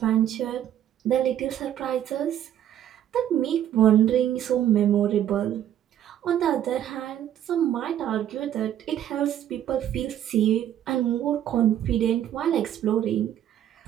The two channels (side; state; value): left; quieter; 10.9 dB